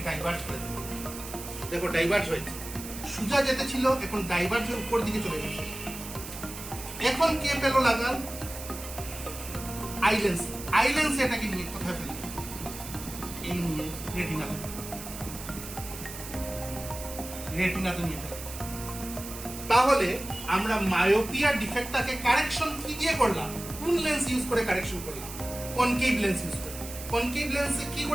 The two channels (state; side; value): noise; right; hiss, 11 dB below the sound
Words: দেখো ডাইভার্জ হয়েছে। সোজা যেতে ছিল, এখন ডাইভার্জ হয়ে উপর দিকে চলে গেছে। এখন কে পেলো লাগাল? আই লেন্স এটাকে নিয়ে কোথায় ফেলবে? এই নিয়ে রেটিনাতে নিয়ে ফেলবে। তাহলে আমরা মায়োপিয়া ডিফেক্টটাকে কারেকশন কি দিয়ে করলাম? কোন লেন্স ইউজ করে কারেকশন করলাম? কনকেভ লেন্স ইউজ করে। কনকেভ লেন্সে কি